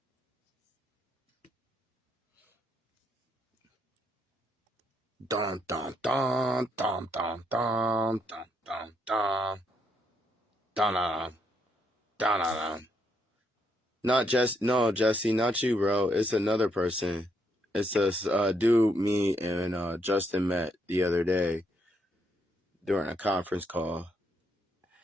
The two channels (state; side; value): normal; both; correlation 0.75